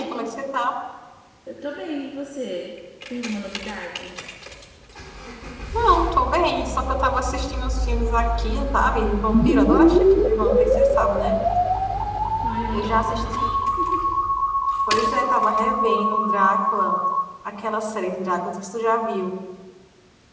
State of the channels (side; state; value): both; identical; correlation 1.00